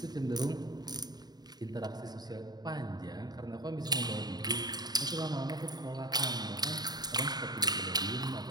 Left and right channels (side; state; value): left; late; 0.20 ms